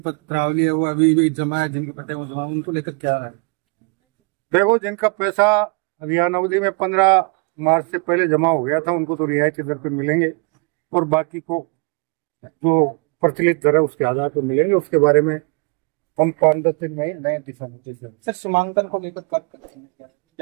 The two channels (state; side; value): quieter; left; 34.8 dB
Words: है वो अभी भी जमा है, जिनके पट्टे वो जमा, उनको लेकर क्या है? देखो, जिनका पैसा अभियान अवधि में 15 मार्च से पहले जमा हो गया था उनको तो रियायती दर पे मिलेंगे और बाकी को जो प्रचलित दर है उसके आधार पर मिलेंगे। उसके बारे में हम 5-10 दिन में नए दिशा निर्देश। सर, सीमांकन को लेकर